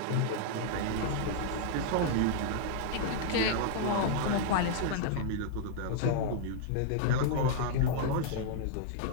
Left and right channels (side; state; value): both; different; correlation -0.01